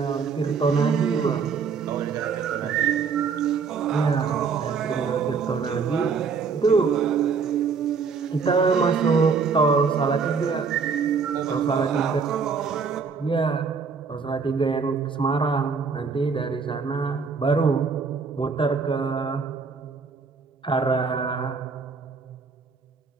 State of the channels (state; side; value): quieter; left; 5.4 dB